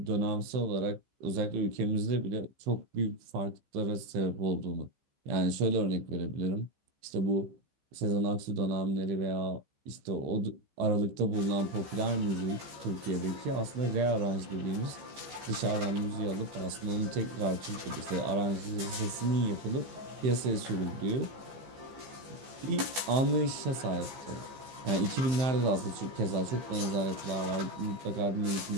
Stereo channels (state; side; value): late; left; 15 ms